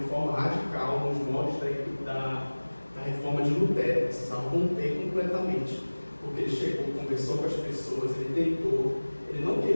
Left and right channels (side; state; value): both; inverted; correlation -1.00